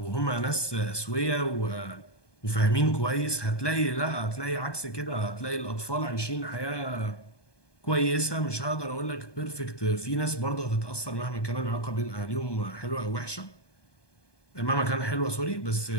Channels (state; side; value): late; right; 1.2 ms